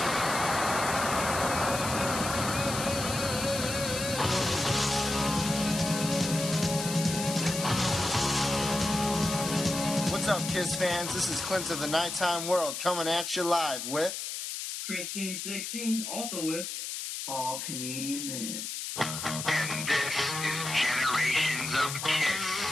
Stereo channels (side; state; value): left; noise; hiss, 5 dB below the sound